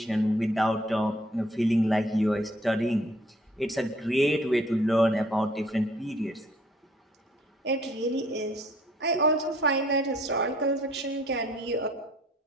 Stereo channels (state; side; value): normal; both; correlation 0.60